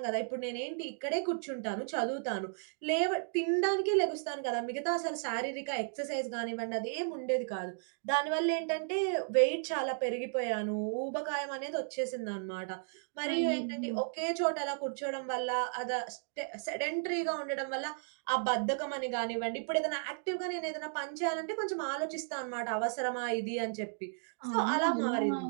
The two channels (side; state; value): left; silent; digital silence